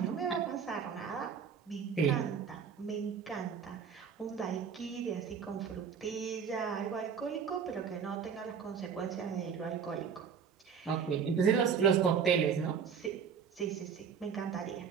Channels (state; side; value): quieter; left; 6.8 dB